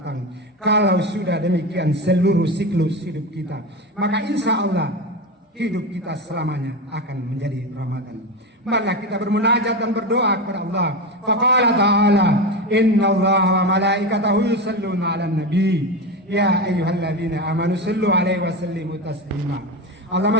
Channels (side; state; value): both; normal; correlation 0.20